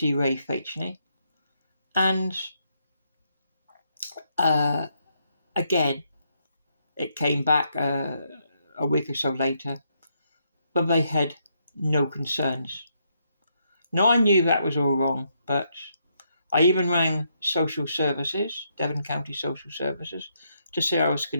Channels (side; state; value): both; inverted; correlation -0.77